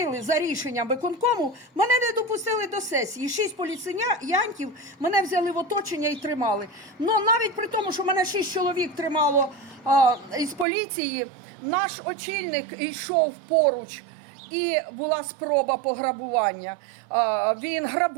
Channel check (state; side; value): drops out; left; at 10.7 s